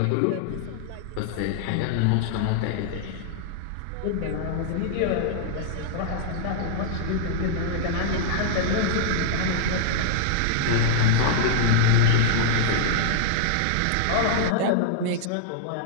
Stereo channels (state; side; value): different; both; correlation -0.01